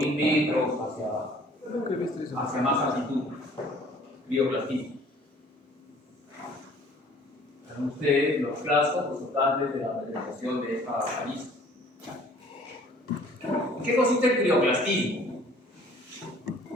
metros hacia más altitud. Crioclastismo. Ven ustedes los clastos resultantes de la meteorización de esta caliza. ¿En qué consiste el crioclastismo?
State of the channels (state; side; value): normal; both; correlation 0.54